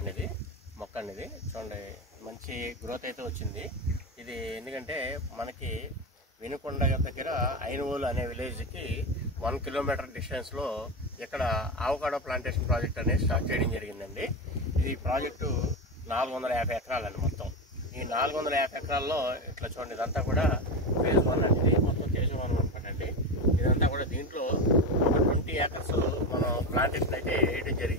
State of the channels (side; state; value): both; normal; correlation 0.17